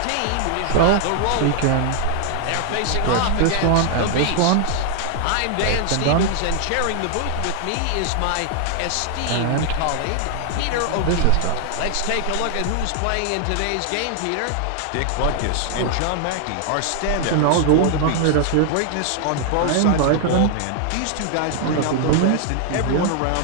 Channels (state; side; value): different; both; correlation 0.00